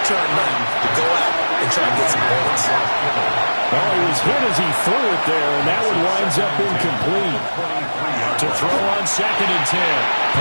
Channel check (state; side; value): inverted; both; correlation -1.00